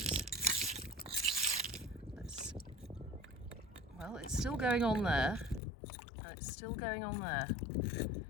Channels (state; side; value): drops out; right; at 5.6 s